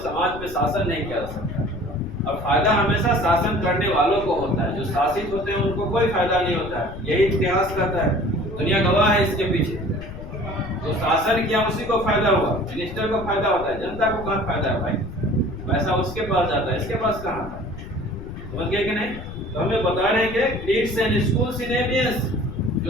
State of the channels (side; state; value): left; noise; rumble, 12 dB below the sound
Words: समाज पे शासन नहीं किया जा सकता। और फायदा हमेशा शासन करने वालों को होता है, जो शासित होते हैं उनको कोई फायदा नहीं होता है। यही इतिहास कहता है, दुनिया गवाह है इसके पीछे। तो शासन किया उसी को फायदा हुआ, मिनिस्टर को फायदा होता है, जनता को कहाँ फायदा है भाई? पैसा उसके पास जाता है, इसके पास कहाँ है? समझ गए कि नहीं? तो हमें बता रहे हैं कि क्रीड्स एंड स्कूल्स इन एवियंस,